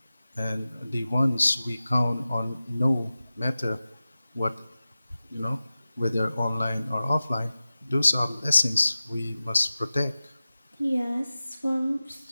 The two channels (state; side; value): inverted; both; correlation -0.96